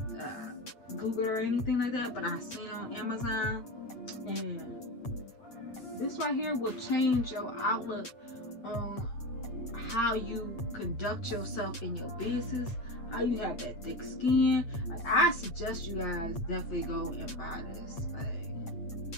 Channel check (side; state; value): right; late; 8.7 ms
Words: Googled her or anything like that, but I've seen it on Amazon, and this right here will change your outlook on how you conduct yourself in your business, how you have that thick skin. Like, I suggest you guys definitely go and buy this. Like,